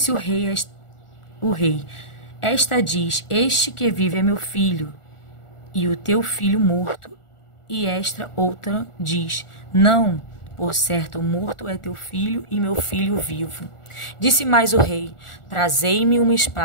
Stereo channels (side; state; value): right; late; 1.4 ms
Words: o rei: esta diz: este que vive é meu filho, e o teu filho morto. E esta outra diz: não, por certo morto é teu filho e meu filho vivo. Disse mais o rei: trazei-me uma